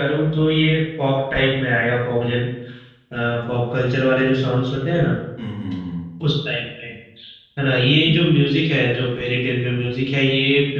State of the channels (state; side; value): identical; both; correlation 1.00